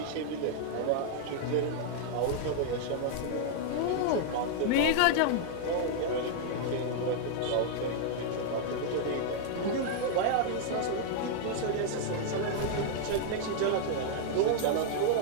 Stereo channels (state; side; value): different; both; correlation -0.01